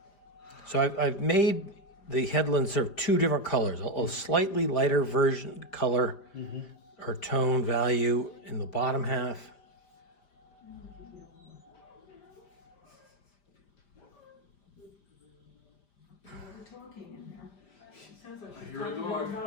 So I've made the headland serve two different colors, a slightly lighter version color or tone value in the bottom half. I hear a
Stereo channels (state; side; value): late; right; 5.0 ms